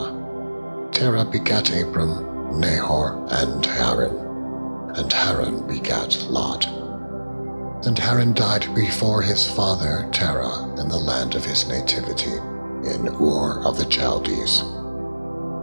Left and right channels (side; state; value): both; inverted; correlation -1.00